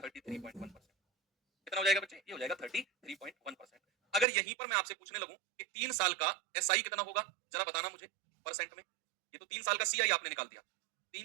कितना हो जाएगा बच्चे? ये हो जाएगा 33.1%। अगर यहीं पर मैं आपसे पूछने लगूं कि 3 साल का एसआई कितना होगा, जरा बताना मुझे परसेंट में। ये तो 3 साल का सीआई आपने निकाल दिया,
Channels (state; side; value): drops out; left; at 4.2 s